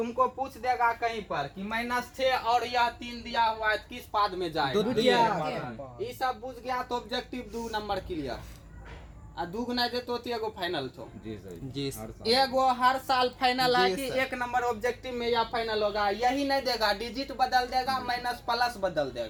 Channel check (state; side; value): identical; both; correlation 1.00